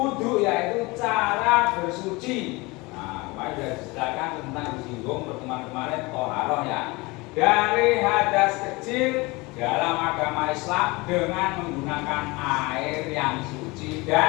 yaitu cara bersuci. Nah, kemarin sudah dijelaskan tentang disinggung pertemuan kemarin toharoh ya. Dari hadas kecil dalam agama Islam dengan menggunakan air yang suci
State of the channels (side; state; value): right; quieter; 24.1 dB